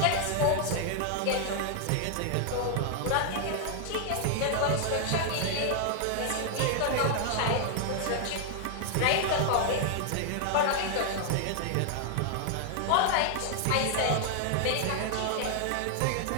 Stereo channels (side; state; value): both; different; correlation 0.00